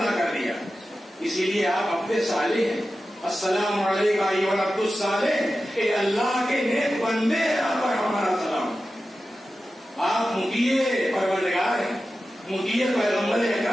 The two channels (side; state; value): both; normal; correlation 0.93